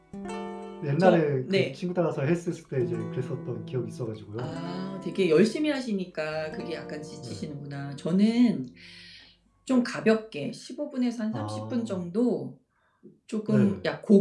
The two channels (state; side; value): identical; both; correlation 1.00